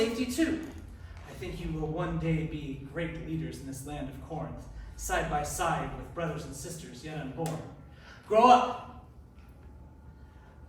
too. I think you will one day be great leaders in this land of Corinth, side by side with brothers and sisters yet unborn. Grow up.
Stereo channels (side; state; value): both; identical; correlation 1.00